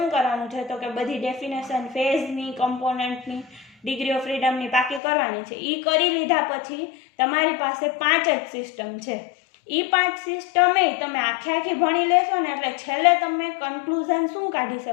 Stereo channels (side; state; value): right; drops out; at 5.0 s